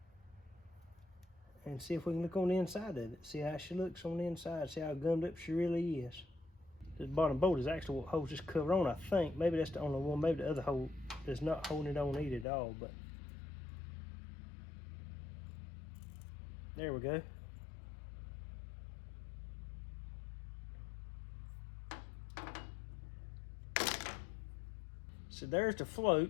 And see if we can look on the inside of it. See how she looks on the inside. See how gummed up she really is. This bottom bolt is actually what holds this cover on, I think. Maybe that's the only one. Maybe the other hole is not holding it on either at all, but there we go. So there's the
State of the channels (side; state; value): right; drops out; at 12.5 s